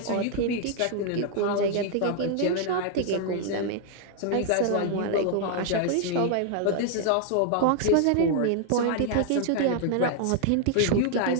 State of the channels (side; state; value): both; different; correlation 0.00